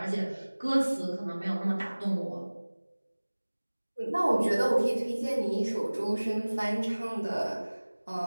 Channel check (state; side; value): inverted; both; correlation -1.00